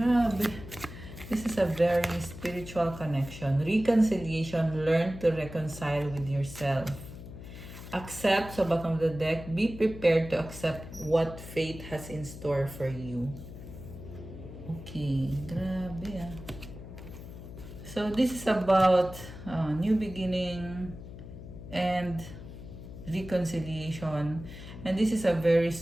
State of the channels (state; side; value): noise; left; hum, 13 dB below the sound